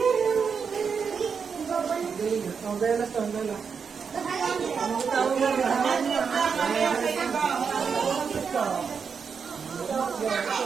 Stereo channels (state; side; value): quieter; left; 6.1 dB